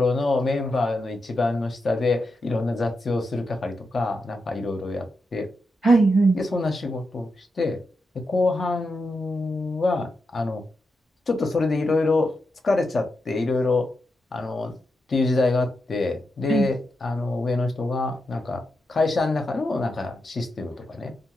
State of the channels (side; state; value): both; normal; correlation 0.86